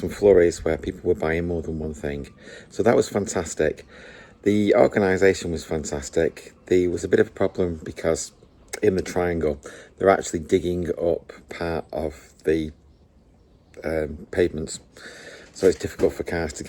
flurries where people were buying more than one thing, so that was fantastic. The organisation was fantastic. There was a bit of a problem because in the triangle they're actually digging up part of the pavements, so it's difficult for cars to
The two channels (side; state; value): both; identical; correlation 1.00